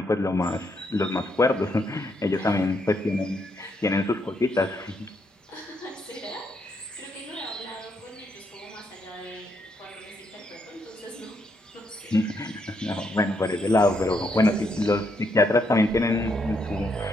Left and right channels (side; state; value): both; normal; correlation 0.76